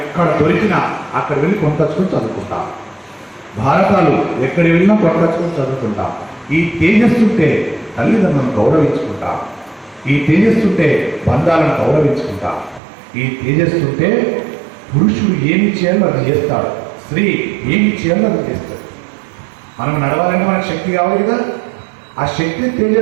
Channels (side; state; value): left; drops out; at 12.8 s